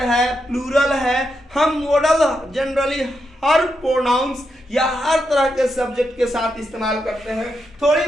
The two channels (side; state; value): both; normal; correlation 0.84